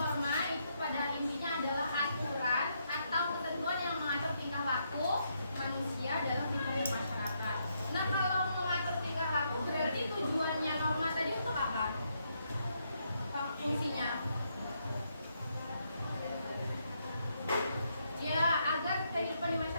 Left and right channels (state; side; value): inverted; both; correlation -0.77